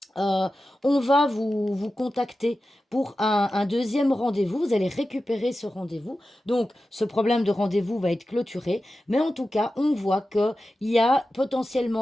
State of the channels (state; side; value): normal; both; correlation 0.93